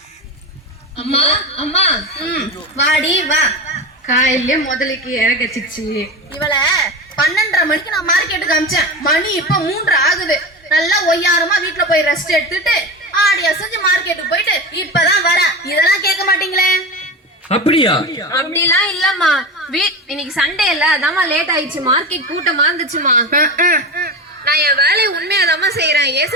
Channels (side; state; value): both; normal; correlation 0.24